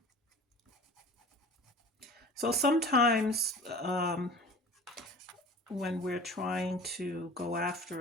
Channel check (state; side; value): normal; both; correlation 0.40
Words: So sometimes when we're trying to go